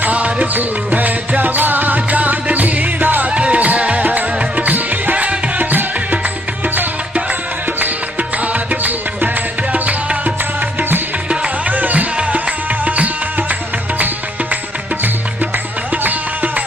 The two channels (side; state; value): both; normal; correlation 0.69